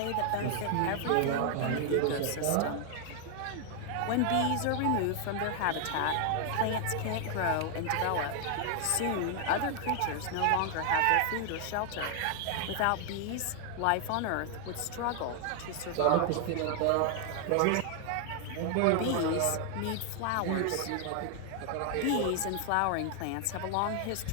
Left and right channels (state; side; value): different; both; correlation 0.00